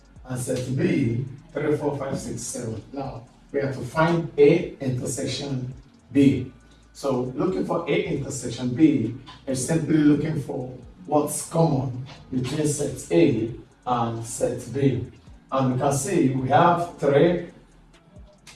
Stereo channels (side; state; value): both; identical; correlation 1.00